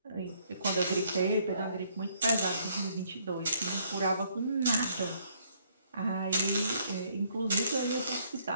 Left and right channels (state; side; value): inverted; both; correlation -0.67